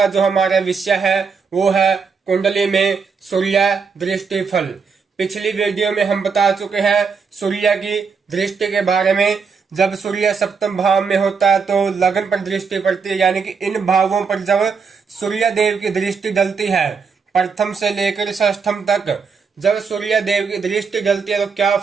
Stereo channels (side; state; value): left; quieter; 5.5 dB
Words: जो हमारा विषय है वो है कुंडली में सूर्य दृष्टि फल। पिछली वीडियो में हम बता चुके हैं सूर्य की दृष्टि के बारे में। जब सूर्य सप्तम भाव में होता है तो लगन पर दृष्टि पड़ती है, यानी कि इन भावों पर जब सूर्य देव की दृष्टि डलती है प्रथम से लेकर षष्ठम तक, जब सूर्य देव की दृष्टि डलती है तो क्या